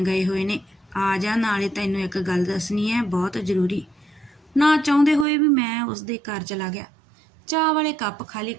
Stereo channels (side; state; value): left; drops out; at 5.2 s